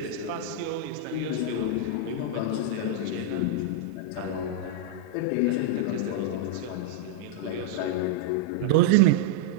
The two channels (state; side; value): different; both; correlation -0.01